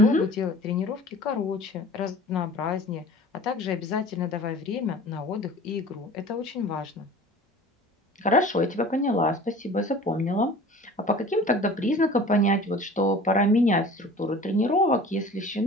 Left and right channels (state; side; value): normal; both; correlation 0.43